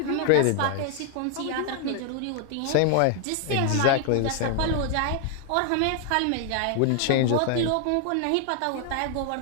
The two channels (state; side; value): different; both; correlation 0.00